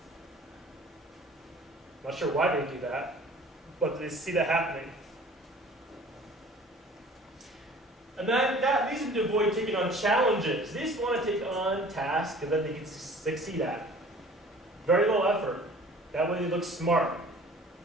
Not sure why they do that, but they see that happening. And that leads them to avoid taking on challenges. They just want to take on tasks that they can succeed at. Very low effort. That way they look smart.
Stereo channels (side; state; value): both; normal; correlation 0.48